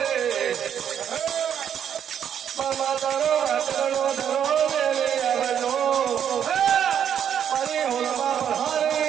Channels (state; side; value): quieter; left; 8.9 dB